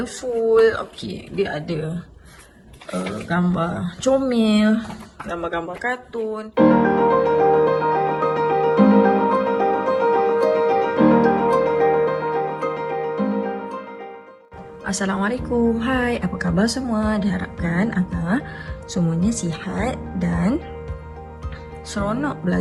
Okey, dia ada gambar comel, gambar-gambar kartun. Assalamualaikum, hai, apa khabar semua? Diharapkan agar semuanya sihat dan seronok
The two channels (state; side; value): identical; both; correlation 1.00